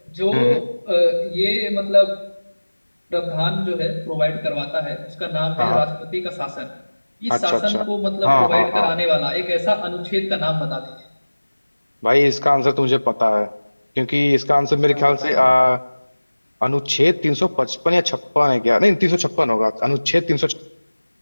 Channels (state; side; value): inverted; both; correlation -1.00